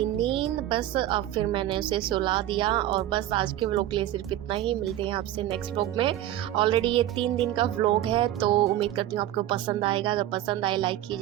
नींद, बस अब फिर मैंने उसे सुला दिया। और बस आज के व्लॉग के लिए सिर्फ इतना ही, मिलते हैं आपसे नेक्स्ट व्लॉग में। ऑलरेडी ये 3 दिन का व्लॉग है, तो उम्मीद करती हूँ आपको पसंद आएगा। अगर पसंद आए लाइक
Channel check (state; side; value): quieter; left; 13.1 dB